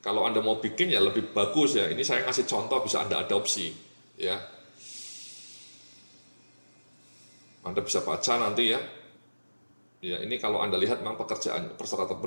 Kalau Anda mau bikin ya lebih bagus ya. Ini saya ngasih contoh, bisa Anda adopsi ya. Anda bisa baca nanti ya. Ya, ini kalau Anda lihat memang pekerjaan persyaratan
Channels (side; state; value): both; inverted; correlation -1.00